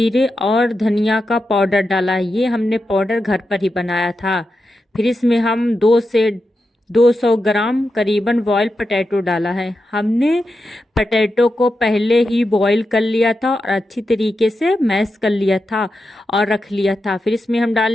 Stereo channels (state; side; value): normal; both; correlation 0.89